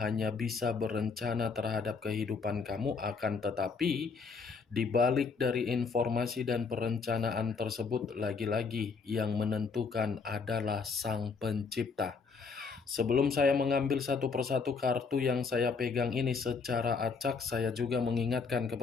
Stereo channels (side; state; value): right; quieter; 5.0 dB